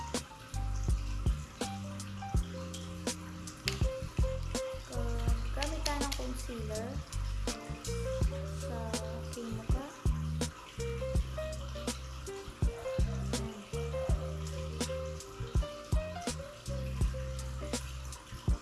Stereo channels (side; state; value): both; identical; correlation 1.00